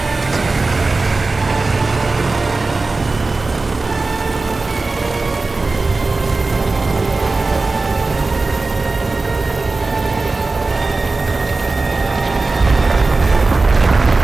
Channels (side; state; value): left; quieter; 3.6 dB